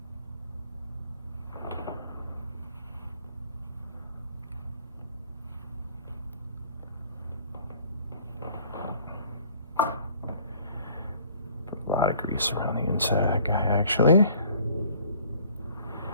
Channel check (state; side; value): inverted; both; correlation -0.55